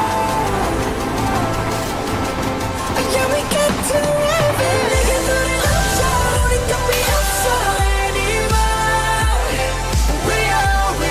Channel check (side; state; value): both; identical; correlation 1.00